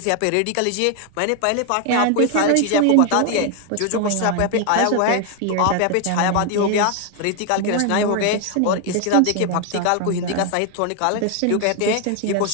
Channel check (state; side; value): different; both; correlation 0.00